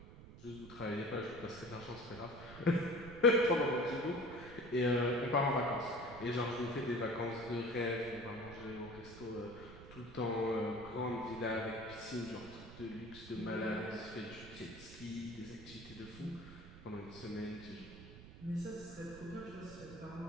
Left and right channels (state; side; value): noise; right; rumble, 15 dB below the sound